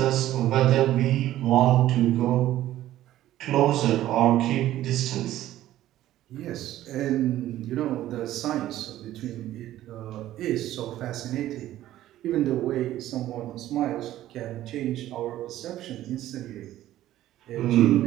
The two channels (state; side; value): quieter; left; 13.8 dB